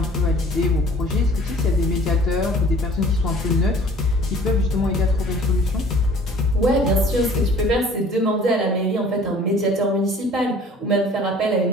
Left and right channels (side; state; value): both; normal; correlation 0.50